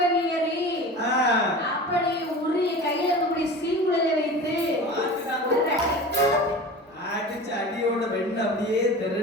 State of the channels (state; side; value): normal; both; correlation 0.35